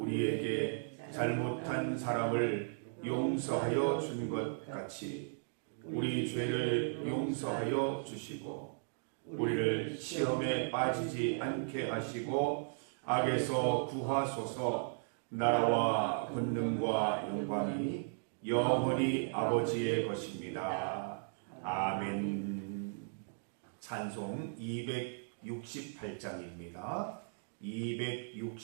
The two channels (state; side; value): silent; left; digital silence